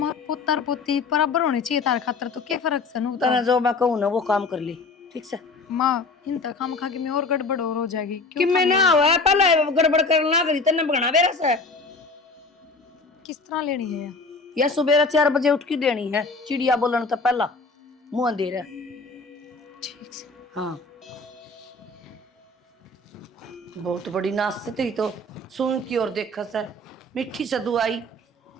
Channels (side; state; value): right; quieter; 3.3 dB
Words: पुत्र पुत्री बराबर होनी चाहिए तार खातर तो क्या फर्क से नू तना जो मैं कहूं ना वो काम कर ली ठीक से माँ इन तक हम खा के मैं और गड़बड़ और हो जाएगी कि मैं ना हुआ पहले गड़बड़ करना करी तने बगना बेरा से किस तरह लेनी है ये? या सुबह 4 बजे उठ के देनी है चिड़िया बोलन तो पहला मुंह अंधेरा ठीक से हाँ बहुत बड़ी नाश से तेरी तो सुन की और देखा सर मिठी से दुआई